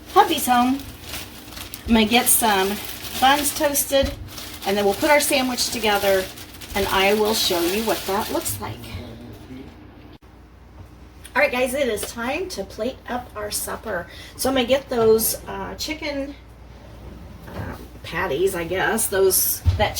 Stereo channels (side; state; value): both; identical; correlation 1.00